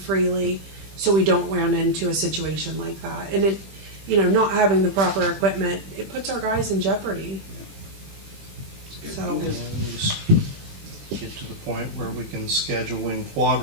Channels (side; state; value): left; late; 20 ms